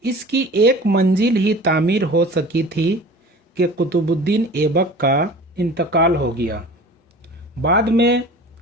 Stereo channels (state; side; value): normal; both; correlation 0.41